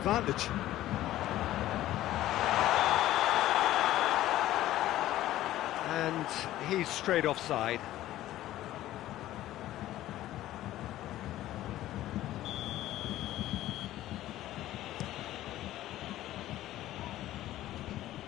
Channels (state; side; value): quieter; right; 14.4 dB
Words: And he's straight offside.